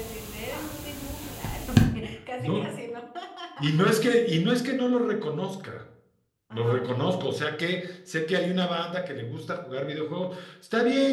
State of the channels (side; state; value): both; identical; correlation 1.00